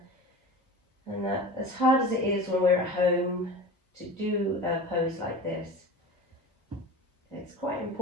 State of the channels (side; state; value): both; normal; correlation 0.34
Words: and that as hard as it is when we're at home to do a pose like this, it's quite